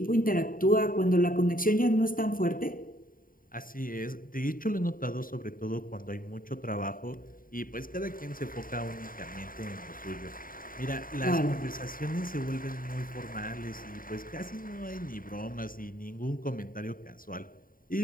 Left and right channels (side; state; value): right; late; 0.41 ms